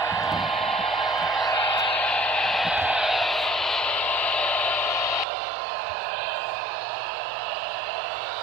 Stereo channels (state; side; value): drops out; left; at 5.2 s